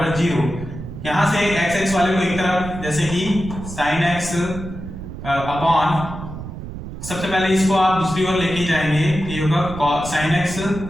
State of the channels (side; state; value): right; noise; rumble, 10 dB below the sound